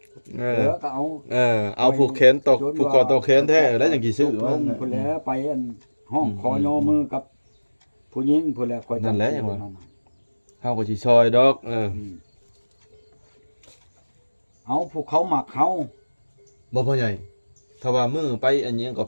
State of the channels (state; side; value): inverted; both; correlation -1.00